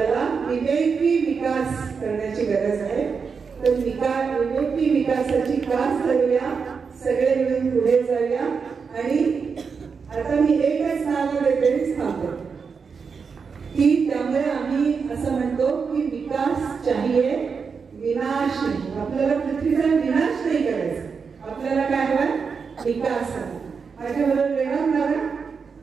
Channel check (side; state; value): left; quieter; 5.6 dB